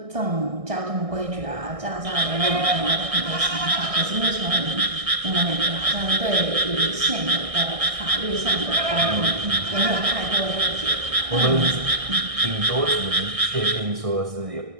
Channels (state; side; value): late; left; 1.6 ms